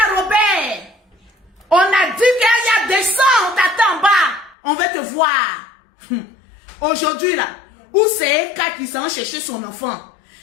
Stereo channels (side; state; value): right; drops out; at 4.5 s